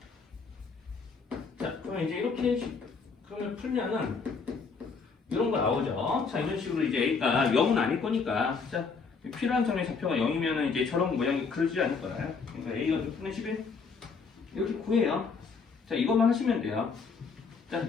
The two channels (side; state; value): right; quieter; 5.0 dB